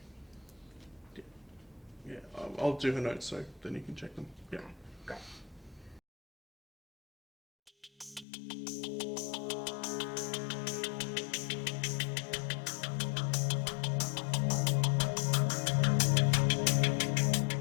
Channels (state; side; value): drops out; right; at 8.2 s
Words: Yeah, I'll do her notes so then you can check them. Yeah. Okay, great.